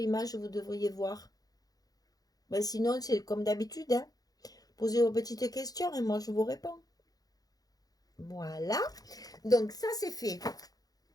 vous devriez voir. Ben, sinon, c'est comme d'habitude, hein. Posez vos petites questions et moi, je vous réponds. Voilà. Donc, ça, c'est fait.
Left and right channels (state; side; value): late; right; 0.18 ms